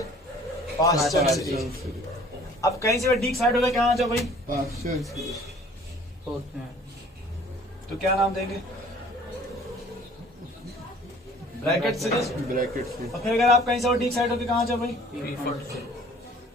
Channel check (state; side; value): normal; both; correlation 0.52